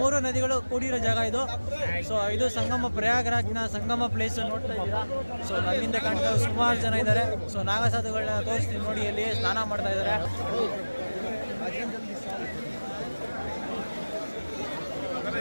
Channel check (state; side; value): inverted; both; correlation -1.00